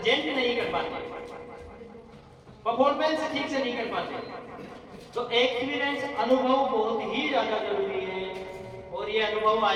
नहीं कर पाते, परफॉर्मेंस ठीक से नहीं कर पाते। तो एक्सपीरियंस, अनुभव बहुत ही ज्यादा जरूरी है, और ये अनुभव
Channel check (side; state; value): both; identical; correlation 1.00